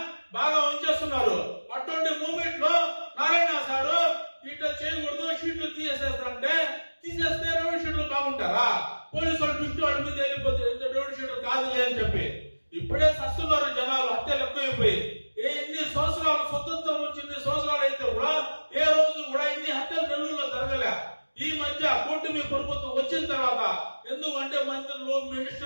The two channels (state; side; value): inverted; both; correlation -1.00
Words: బాగా ఉంచేస్తున్నారు. అటువంటి మూమెంట్ లో నారాయణ సారు ఇట్లా చేయకూడదు, షీట్లు తీసేస్తే రౌడీ షీట్లు బాగుంటారా? పోలీసు వాళ్ళు దృష్టి వాళ్ళ మీద వెళ్ళిపోతే రౌడీ షీట్లు కాదులే అని చెప్పి ఇప్పుడే సస్తున్నారు జనాలు. హత్యలు ఎక్కువైపోయి ఎన్ని సంవత్సరాలు స్వతంత్రం వచ్చి 2 సంవత్సరాలు అయితే కూడా ఏ రోజు కూడా ఇన్ని హత్యలు నెల్లూరులో జరగలే. ఈ మధ్య కూటమి ప్రభుత్వం వచ్చిన తర్వాత ఎందుకంటే మంత్రులు,